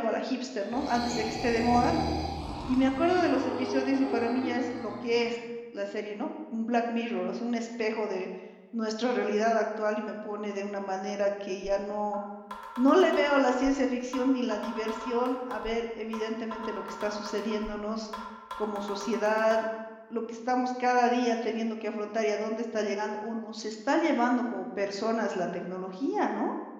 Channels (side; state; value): both; identical; correlation 1.00